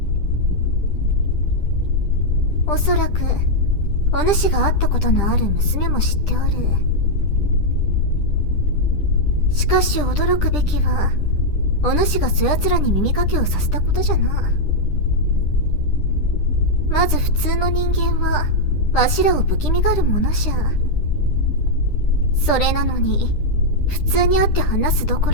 おそらく、お主が会ったことのある娘も知っておる。しかし驚くべきは、お主がそやつらに耳かけをさせたことじゃな。まず普通の人間は、わしらを不気味がるものじゃ。それなのに、普通に会って話すどこ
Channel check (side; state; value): right; late; 10 ms